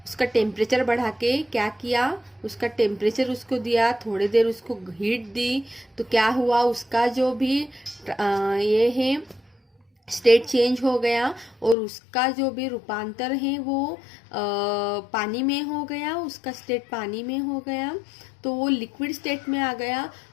उसका टेम्परेचर बढ़ा के क्या किया? उसका टेम्परेचर उसको दिया, थोड़ी देर उसको हीट दी, तो क्या हुआ? उसका जो भी ये है स्टेट चेंज हो गया और उसका जो भी रूपांतर है वो पानी में हो गया, उसका स्टेट पानी में हो गया, तो वो लिक्विड स्टेट में आ गया।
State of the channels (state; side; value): drops out; right; at 11.8 s